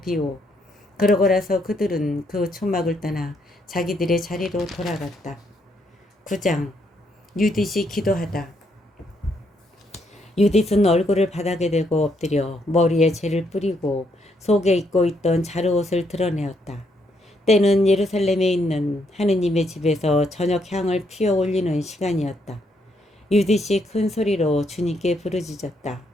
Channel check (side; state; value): both; normal; correlation 0.74